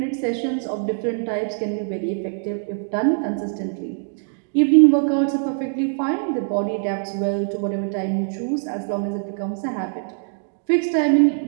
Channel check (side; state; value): left; silent; digital silence